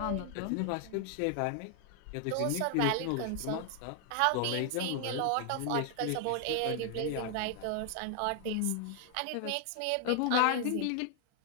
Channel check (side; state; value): both; different; correlation 0.00